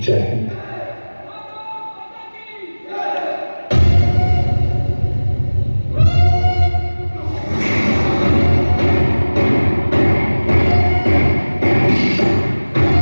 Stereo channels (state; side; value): inverted; both; correlation -1.00